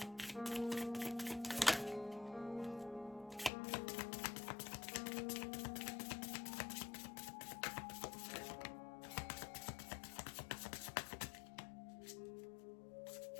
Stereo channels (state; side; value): drops out; right; at 3.5 s